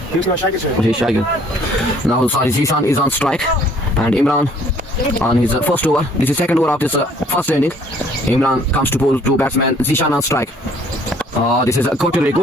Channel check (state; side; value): normal; both; correlation 0.59